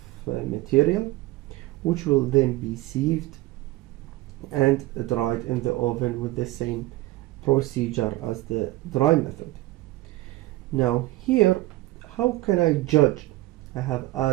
material, which will then be sieved and dried in the oven with the same procedure as the dry method. Now here, how can I judge I have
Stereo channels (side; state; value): left; quieter; 18.4 dB